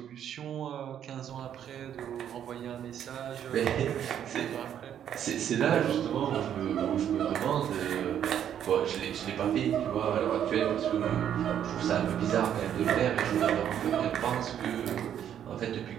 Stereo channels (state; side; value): quieter; left; 9.7 dB